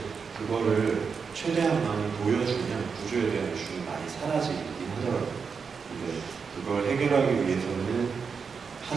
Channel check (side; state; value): left; quieter; 5.7 dB